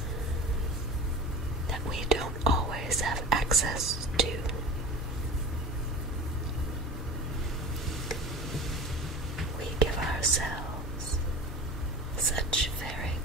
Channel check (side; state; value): both; normal; correlation 0.34